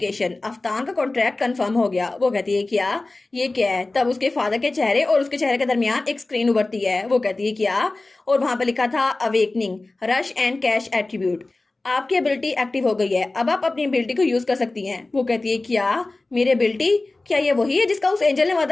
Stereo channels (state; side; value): quieter; right; 3.1 dB